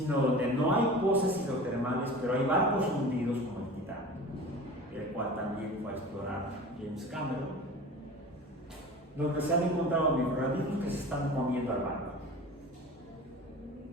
donde no hay pozas hidrotermales, pero hay barcos hundidos como el Titanic, el cual también fue a explorar James Cameron, donde se han encontrado microorganismos que se están comiendo al barco.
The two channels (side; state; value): both; normal; correlation 0.37